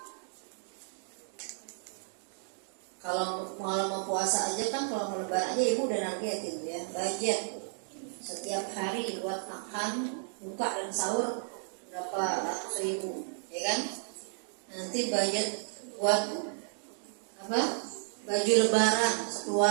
Kalau mau puasa aja kan, kalau mau lebaran aja ibu udah nargetin ya, budget setiap hari buat makan, buka dan sahur berapa ratus ribu ya kan. Nanti budget buat apa, baju lebaran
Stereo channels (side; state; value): left; silent; 56 dB below the other